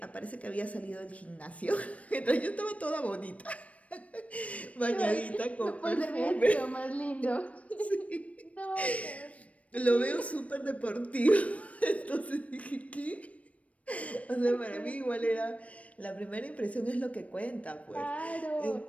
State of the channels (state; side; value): late; right; 0.066 ms